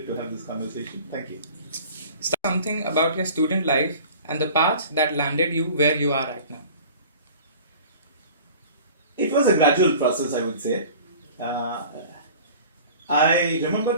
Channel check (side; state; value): both; inverted; correlation -0.43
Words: to have this conversation. Thank you. Something about your student life and the path that landed you where you are right now. It was a gradual process, I would say. I remember